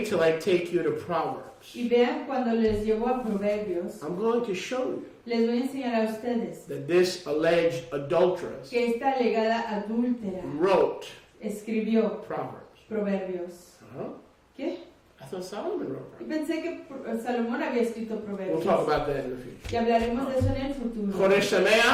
till I take you to Proverbs. Y vean cuando les llevo a Proverbios, I'm going to show you les voy a enseñar a ustedes that this alleged adulteress que esta alegada adúltera wrote escribió Proverbs. Proverbios. Huh? ¿Qué? I thought Solomon wrote Y Proverbs. pensé que Salomón había escrito We'll Proverbios. talk about that in the future. Y hablaremos de eso en el futuro. Chodesh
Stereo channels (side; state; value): both; identical; correlation 1.00